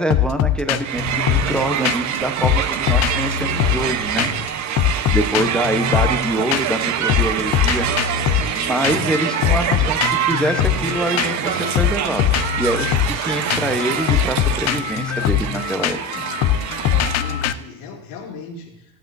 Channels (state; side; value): normal; both; correlation 0.29